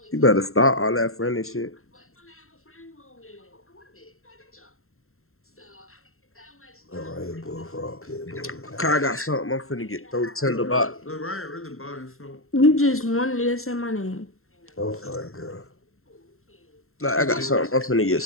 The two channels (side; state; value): right; late; 0.62 ms